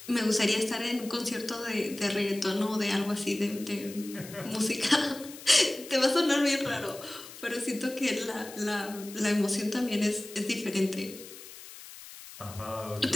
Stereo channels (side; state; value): left; noise; hiss, 15 dB below the sound